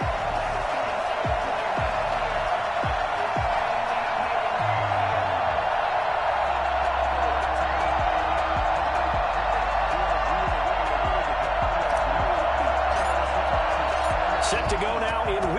Set to go now in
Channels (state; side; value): identical; both; correlation 1.00